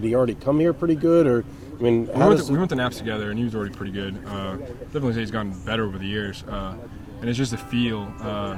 he already come here pretty good, or I mean, we went to Naps together, and he was already pretty good. Definitely say he's gotten better over the years, and it's just a feel.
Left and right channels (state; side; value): identical; both; correlation 1.00